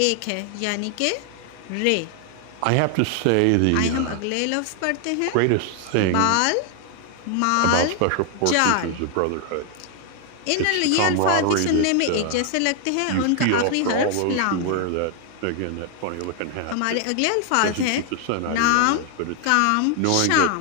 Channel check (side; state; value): both; different; correlation 0.00